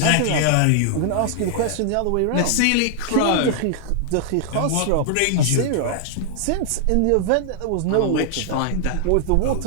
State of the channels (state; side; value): different; both; correlation -0.01